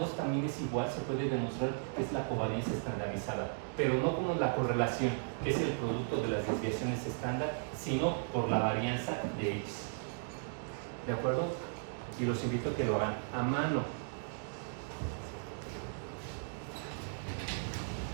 también es igual, se puede demostrar que es la covarianza estandarizada, pero no como la correlación, que es el producto de las desviaciones estándar, sino por la varianza de X. ¿De acuerdo? Y los invito a que lo hagan a mano.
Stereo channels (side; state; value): left; silent; digital silence